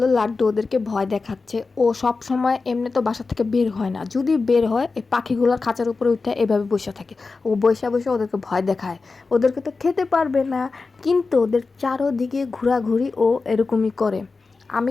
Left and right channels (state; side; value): quieter; right; 4.1 dB